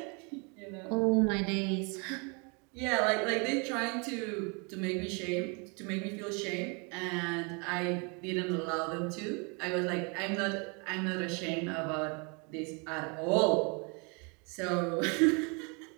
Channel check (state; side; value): quieter; left; 33.0 dB